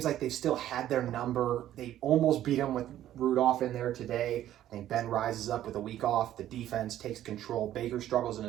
like they've still had their number. They almost beat him with Rudolph in there today. I think Ben rises up with a week off. The defense takes control. Baker struggles in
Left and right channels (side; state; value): left; quieter; 12.4 dB